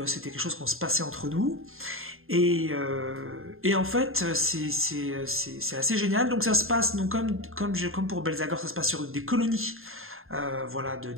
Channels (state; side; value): late; left; 0.61 ms